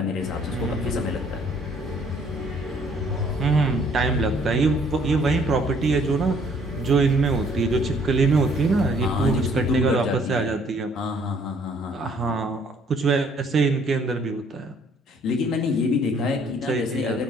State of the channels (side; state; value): both; normal; correlation 0.62